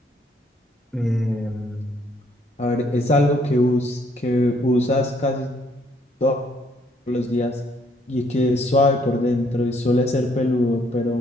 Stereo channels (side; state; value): both; normal; correlation 0.67